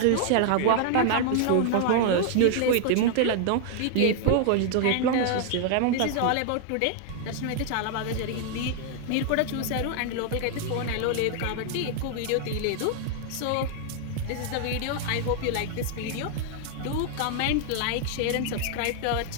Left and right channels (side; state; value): both; different; correlation 0.00